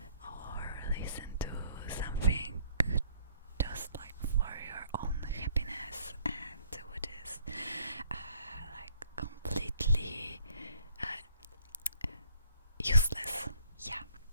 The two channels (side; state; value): both; inverted; correlation -0.61